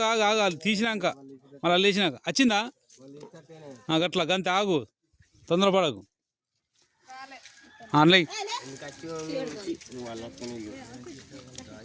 ఆగాలి తీసినాక మళ్ళీ లేచినాక వచ్చిందా గట్లా గంతే ఆగు తొందరపడకు ఆన్లైన్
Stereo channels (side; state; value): both; identical; correlation 1.00